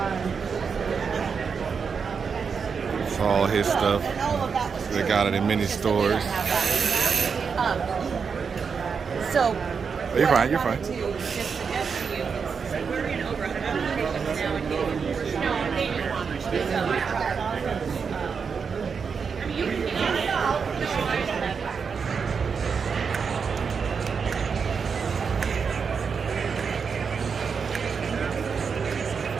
It's all his stuff. They got it in many stores. So Oh, you're fine. You're fine.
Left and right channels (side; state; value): left; quieter; 5.9 dB